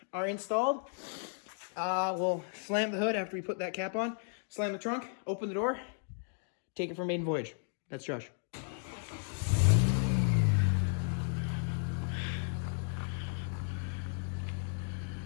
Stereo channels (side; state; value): right; silent; 55 dB below the other